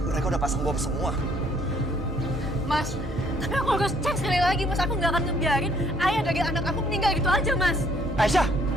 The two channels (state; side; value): normal; both; correlation 0.63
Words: mereka udah pasang bom semua. Mas, tapi aku harus cek sekali lagi Mas. Aku nggak akan ngebiarin ayah dari anak aku meninggal gitu aja Mas. Aisyah,